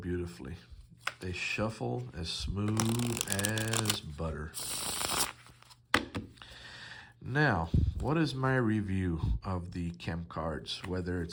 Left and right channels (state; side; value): identical; both; correlation 1.00